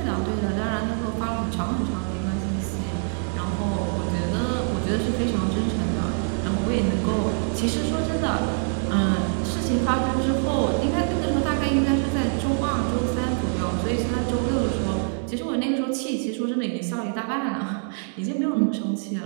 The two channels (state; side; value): silent; left; 62 dB below the other